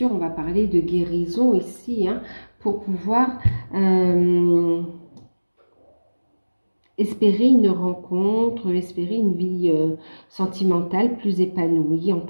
on va parler de guérison ici, pour pouvoir espérer une rencontre, espérer une vie sentimentale plus épanouie en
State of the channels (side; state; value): both; inverted; correlation -1.00